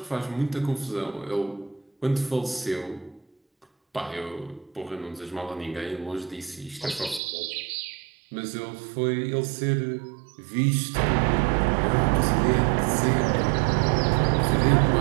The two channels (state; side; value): drops out; left; at 7.2 s